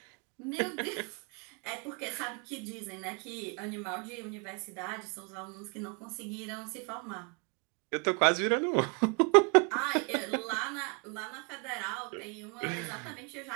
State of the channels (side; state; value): left; quieter; 34.9 dB